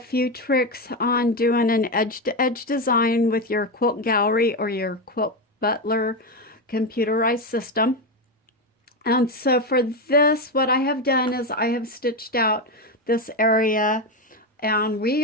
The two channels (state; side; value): normal; both; correlation 0.12